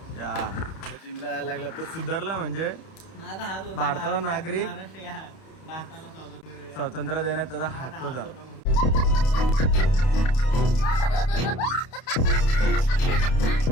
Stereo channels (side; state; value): right; late; 31 ms